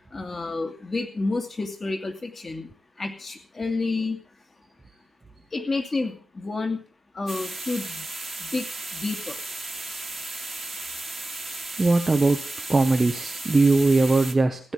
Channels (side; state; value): both; normal; correlation 0.94